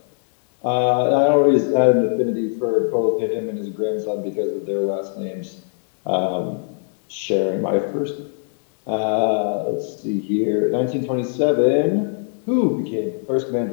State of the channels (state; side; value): silent; right; digital silence